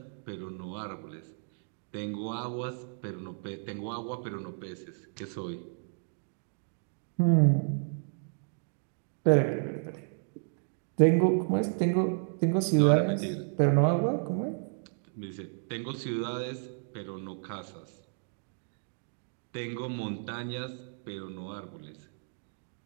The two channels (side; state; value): left; silent; 56 dB below the other